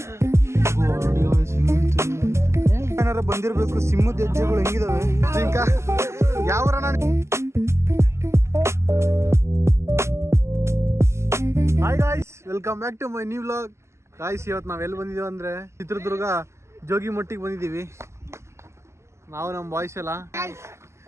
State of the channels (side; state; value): left; late; 0.13 ms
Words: ಏನಾರ ಬಂದಿರ್ಬೇಕು. ಸಿಂಹದ ಹೆಜ್ಜೆಗಳು ಹೆಂಗಿದಾವೆ ಯಾವ hi guys, welcome back to my new vlog. Guys, ಇವತ್ತು ನಾವೆಲ್ಲಿ ಬಂದಿದ್ದೀವಿ ಅಂದರೆ ಚಿತ್ರದುರ್ಗ ಜೋಗಿ ಮಟ್ಟಿಗೆ ಬಂದಿದ್ದೀವಿ. ನಾವು ನಮ್ಮ ಬಾಯ್ಸ್ ಎಲ್ಲ